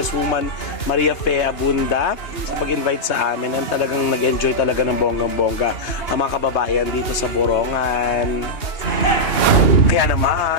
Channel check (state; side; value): late; right; 2.9 ms